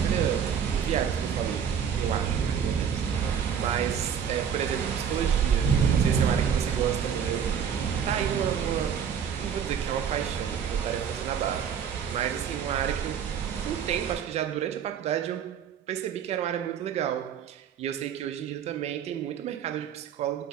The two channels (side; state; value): left; quieter; 7.9 dB